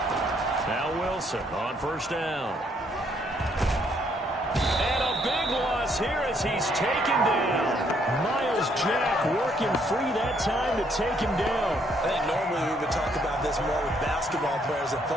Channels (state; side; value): normal; both; correlation 0.69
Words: On 1st down. And a big loss here as he's taken down. Myles Jack working free that time to take him down. I think normally we would talk about this more with basketball players than